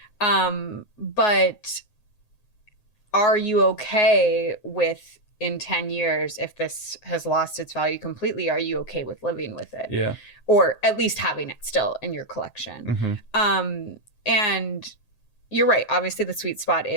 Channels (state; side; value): late; right; 7.7 ms